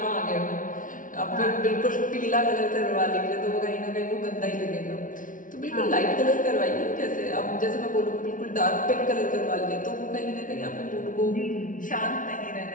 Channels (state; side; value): late; right; 0.38 ms